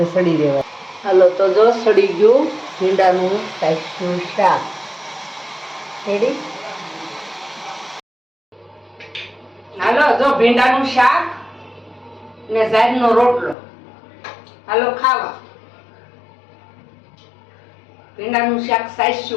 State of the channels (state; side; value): drops out; right; at 13.6 s